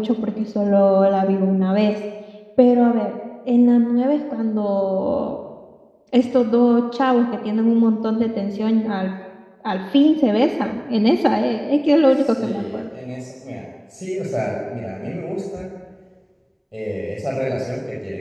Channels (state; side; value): identical; both; correlation 1.00